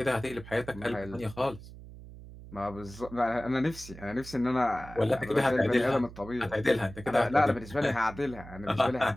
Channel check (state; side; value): noise; right; hum, 16 dB below the sound